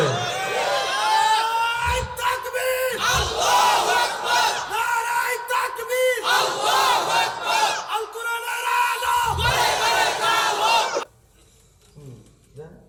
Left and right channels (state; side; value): identical; both; correlation 1.00